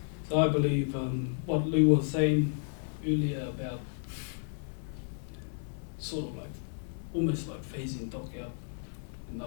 So I believe what Lou was saying earlier about sort of like, almost like phasing dock out, in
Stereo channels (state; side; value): silent; right; 56 dB below the other